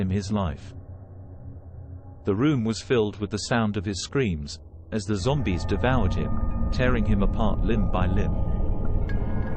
his life. The room was filled with the sound of his screams, as the zombies devoured him, tearing him apart limb by limb.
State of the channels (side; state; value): both; identical; correlation 1.00